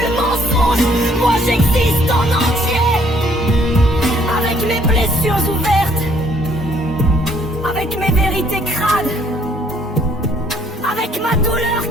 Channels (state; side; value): normal; both; correlation 0.64